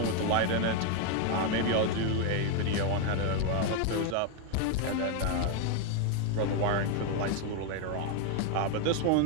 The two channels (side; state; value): both; different; correlation 0.01